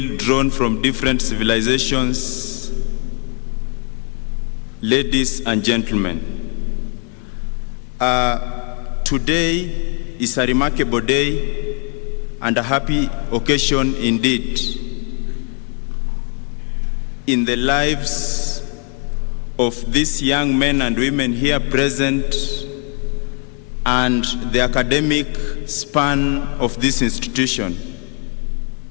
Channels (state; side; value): quieter; right; 39.3 dB